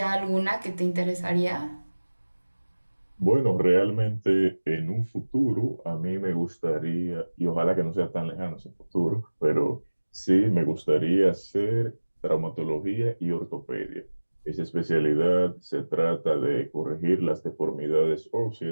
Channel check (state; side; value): inverted; both; correlation -1.00